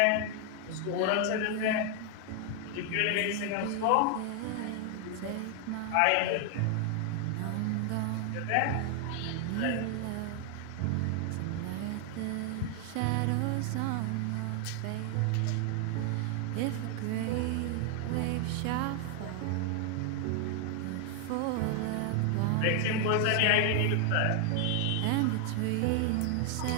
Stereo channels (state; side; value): different; both; correlation 0.00